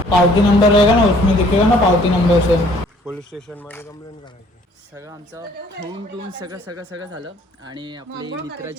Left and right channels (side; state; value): both; normal; correlation 0.58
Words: पावती नंबर रहेगा ना, उसमें दिखेगा ना पावती नंबर से. पोलीस स्टेशन मध्ये कंप्लेंट करायची. सगळं आमचं होऊन टून सगळं झालं आणि आपली